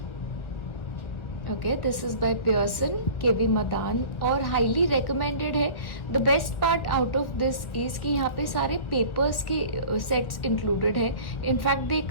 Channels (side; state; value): right; late; 1.1 ms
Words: Okay, this is by Pearson, KV Madan और highly recommended है. The best part out of this is कि यहाँ पे सारे papers के sets included है. In fact, they